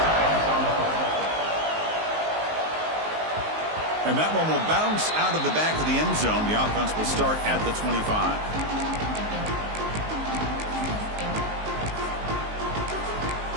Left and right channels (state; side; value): late; left; 19 ms